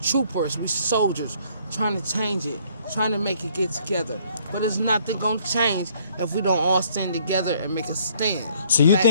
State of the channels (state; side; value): inverted; both; correlation -0.63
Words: troopers, we soldiers, trying to change it, trying to make it get together. But it's nothing gonna change if we don't all stand together and make a stand. So you Black,